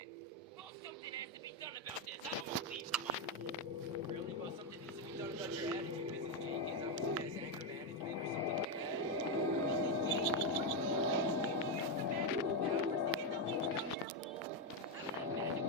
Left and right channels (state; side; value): normal; both; correlation 0.05